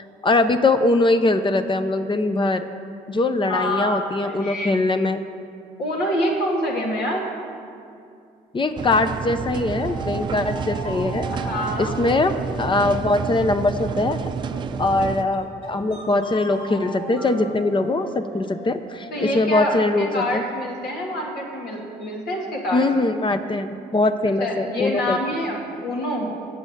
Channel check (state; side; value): normal; both; correlation 0.59